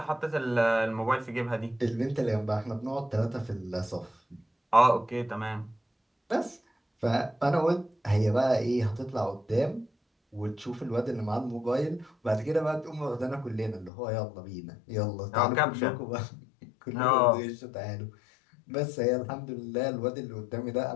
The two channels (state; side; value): drops out; right; at 13.9 s